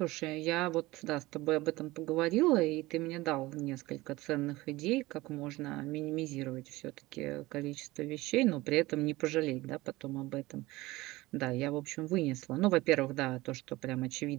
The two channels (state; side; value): quieter; left; 19.7 dB